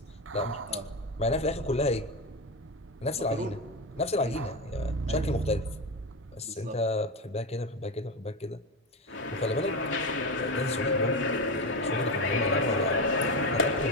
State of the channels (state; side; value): normal; both; correlation 0.16